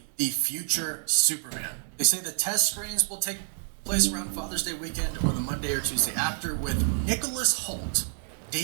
the future Superman. They say the test screens will take place around Father's Day weekend or the Monday or Tuesday after, with Nicholas Hoult,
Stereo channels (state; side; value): silent; left; digital silence